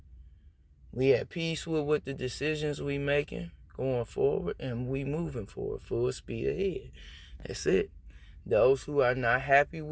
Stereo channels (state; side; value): identical; both; correlation 1.00